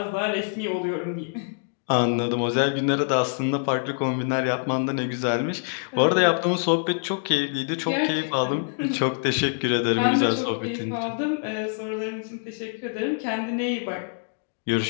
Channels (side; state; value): right; silent; digital silence